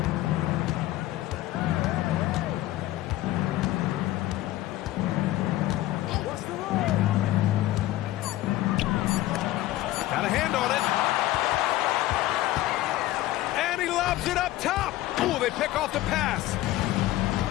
Got a hand on it. And he lobs it up top. Ooh, they pick off the pass.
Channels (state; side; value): quieter; right; 15.8 dB